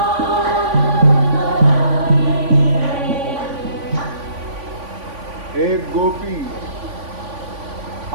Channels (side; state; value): left; late; 3.5 ms